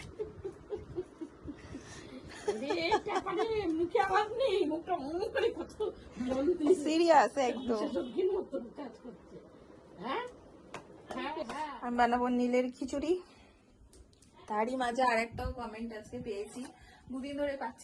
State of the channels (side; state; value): both; identical; correlation 1.00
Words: মুখে আওয়াজ নেই, মুখটা মনে করে কত সিরিয়াস একদম। কাজ করছে। হ্যাঁ, আমি বানাবো নীলের খিচুড়ি। তারই মাঝে আরেকটাও কমেন্ট আজকে পেয়েছি, দুদিন ধরে